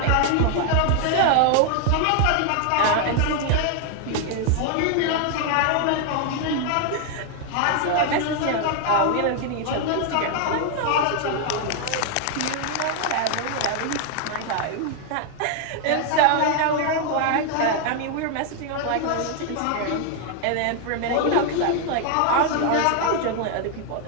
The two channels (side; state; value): both; different; correlation 0.00